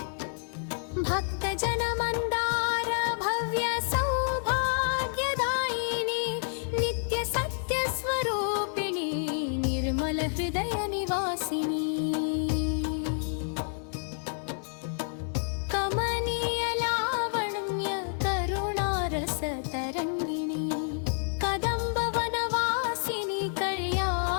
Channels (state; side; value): silent; right; digital silence